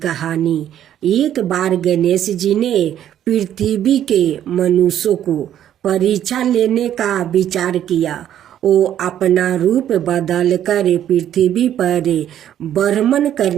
कहानी। एक बार गणेश जी ने पृथ्वी के मनुष्यों को परीक्षा लेने का विचार किया। वो अपना रूप बदल कर पृथ्वी पर भ्रमण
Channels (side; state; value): left; quieter; 10.8 dB